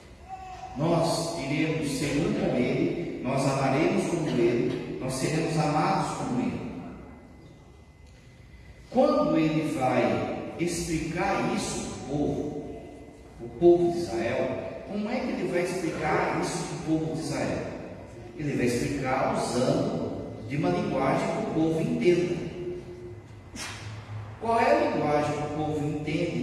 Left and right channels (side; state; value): both; identical; correlation 1.00